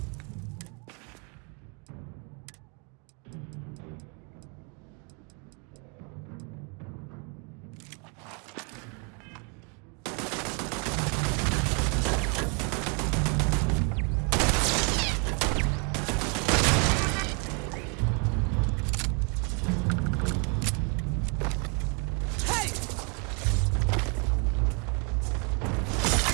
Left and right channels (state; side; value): quieter; left; 35.4 dB